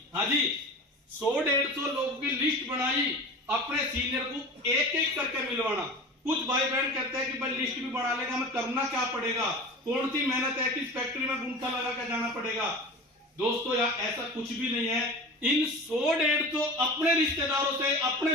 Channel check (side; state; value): both; normal; correlation 0.34